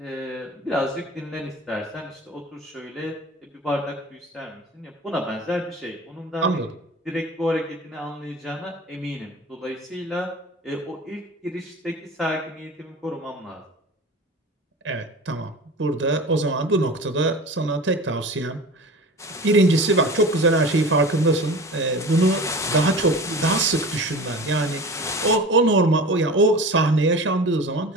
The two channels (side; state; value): both; normal; correlation 0.36